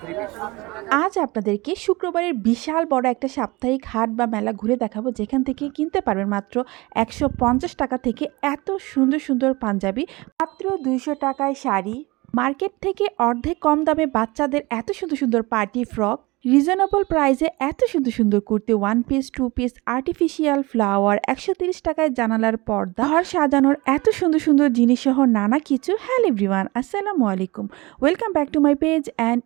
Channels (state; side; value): quieter; left; 23.0 dB